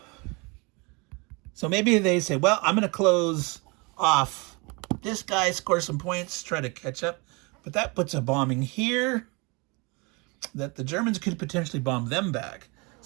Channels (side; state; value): left; quieter; 28.8 dB